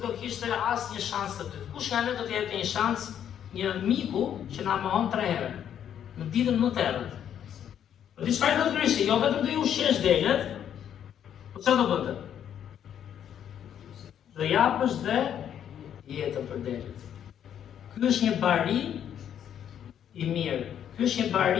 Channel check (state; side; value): quieter; right; 9.5 dB